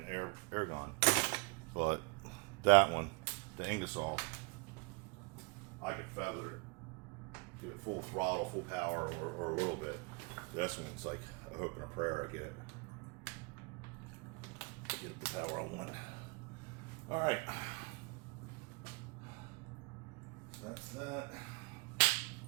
air gun, but that one, the Ingersoll, I could feather it, give it full throttle, full power, or a little bit. This one's like a hope and a prayer I get it. Get the power I want. All right, so that's that.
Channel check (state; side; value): quieter; left; 28.9 dB